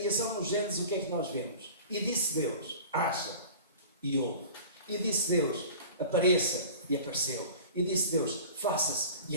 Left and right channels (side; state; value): both; inverted; correlation -0.40